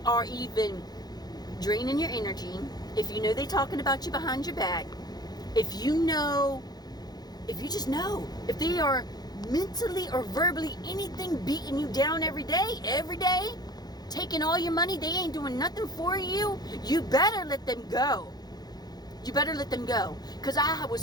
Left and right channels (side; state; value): right; late; 0.19 ms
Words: are even draining your energy, if you know they're talking about you behind your back, if you just know, if they are mentally or verbally anything beating you down every day, taking all your money, they ain't doing nothing for you, you better let them go. You better let them go. Because I was